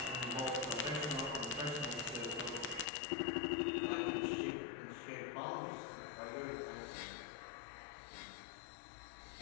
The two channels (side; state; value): right; drops out; at 2.9 s